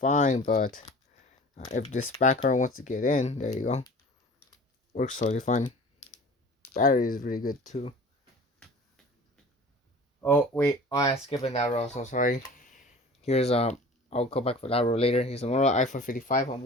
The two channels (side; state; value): both; normal; correlation 0.42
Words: but if this background wants to get in, there you go. Works totally fine. Battery is really good too. Oh wait, I skipped that row. So sorry. Here's I'll go back for that row later. Here's a Motorola iPhone 55 on